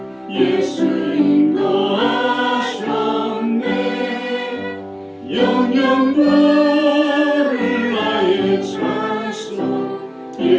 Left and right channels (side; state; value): both; identical; correlation 1.00